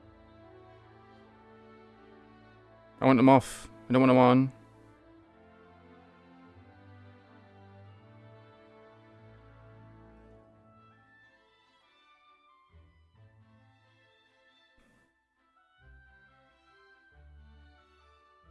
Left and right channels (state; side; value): identical; both; correlation 1.00